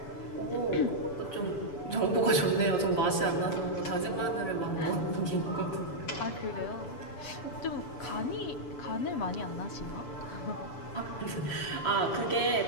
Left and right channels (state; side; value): late; right; 7.1 ms